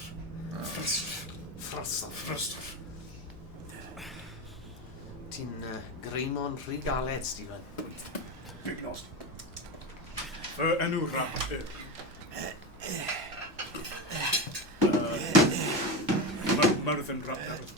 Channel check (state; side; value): noise; left; hum, 22 dB below the sound